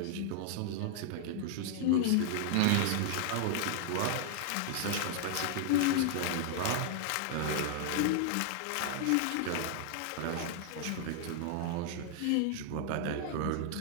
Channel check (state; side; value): different; both; correlation 0.00